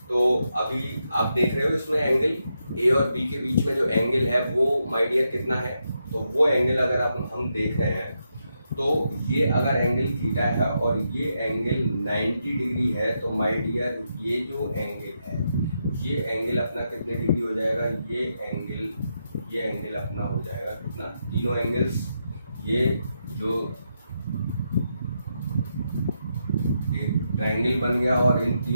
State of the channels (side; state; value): both; inverted; correlation -0.83